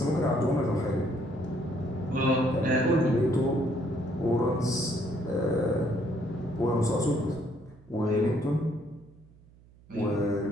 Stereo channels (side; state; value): right; noise; hum, 26 dB below the sound